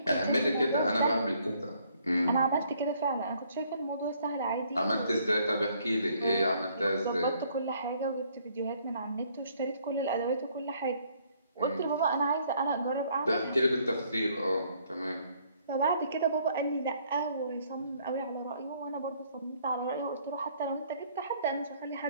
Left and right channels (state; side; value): inverted; both; correlation -0.65